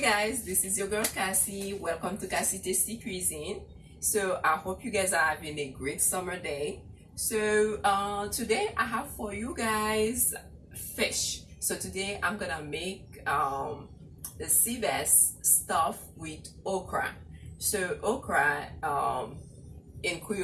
guys, this is your girl Cassie. Welcome to Cassie Tasty Cuisine. So I hope you guys are having a great summer day. So today I have for you guys fish. So today I'm gonna make the sea bass stuff with okra. So okra in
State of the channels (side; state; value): both; identical; correlation 1.00